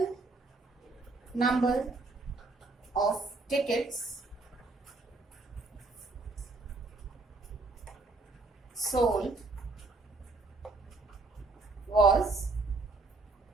number of tickets sold was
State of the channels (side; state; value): left; quieter; 3.4 dB